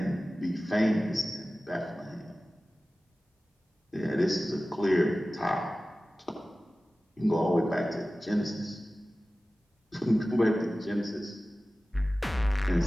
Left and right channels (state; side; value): normal; both; correlation 0.96